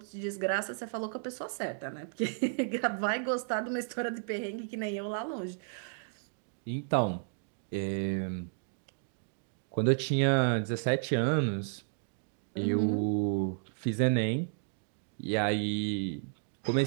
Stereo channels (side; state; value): left; silent; digital silence